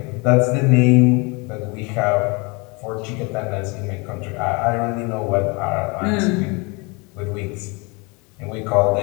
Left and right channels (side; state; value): right; quieter; 28.7 dB